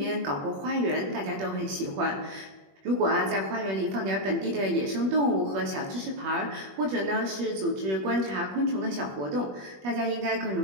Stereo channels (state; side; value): late; left; 21 ms